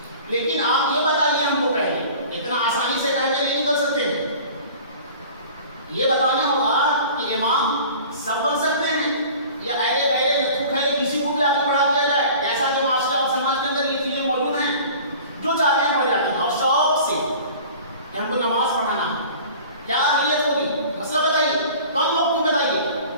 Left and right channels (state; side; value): inverted; both; correlation -0.43